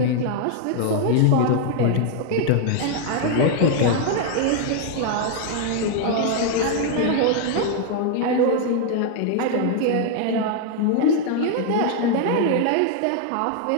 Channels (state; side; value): different; both; correlation 0.00